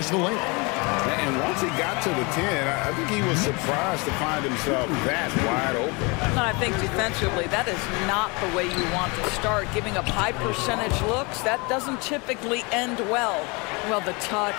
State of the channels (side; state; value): right; quieter; 28.7 dB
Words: the lane. And once he got to the 10, I think he was surprised to find himself that wide open. And I think defensively, that is not the way you want to start. Giving up high percentage looks, that doesn't typically end well. Well, the